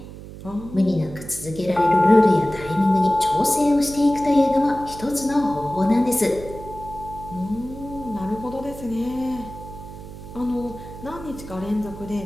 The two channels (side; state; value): right; noise; hum, 14 dB below the sound